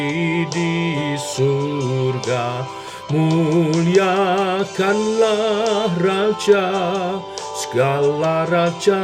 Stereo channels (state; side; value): identical; both; correlation 1.00